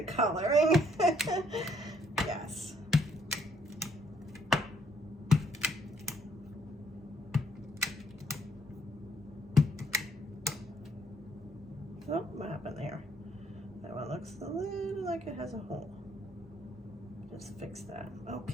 coloring. Yes. Oh, what happened there? That one looks a little like it has a hole. Just fix that.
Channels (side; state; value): both; normal; correlation 0.68